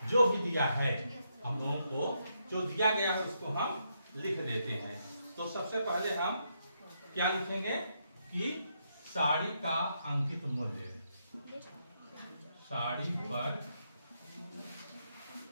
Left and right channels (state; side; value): inverted; both; correlation -0.79